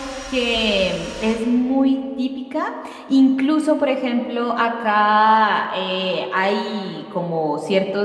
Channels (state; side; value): identical; both; correlation 1.00